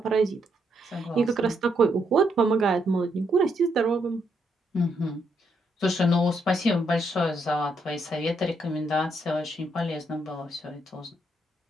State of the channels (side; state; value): both; normal; correlation 0.76